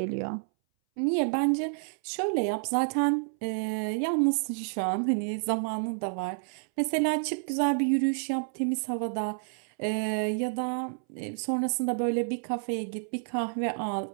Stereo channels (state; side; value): silent; left; 58 dB below the other